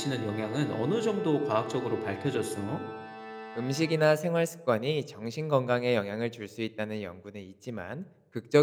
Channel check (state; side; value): identical; both; correlation 1.00